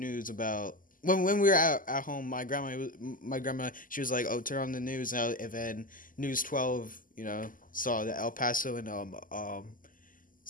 about when we were at home. My grandma, she was like, "Oh, turn on the news," and then News 12, you know, saw the El Paso and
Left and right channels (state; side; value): late; right; 0.40 ms